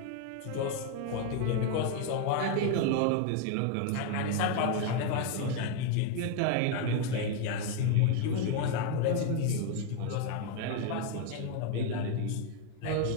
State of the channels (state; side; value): different; both; correlation 0.01